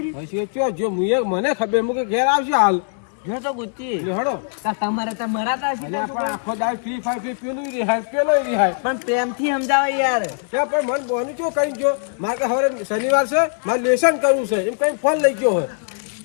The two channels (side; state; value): right; silent; 65 dB below the other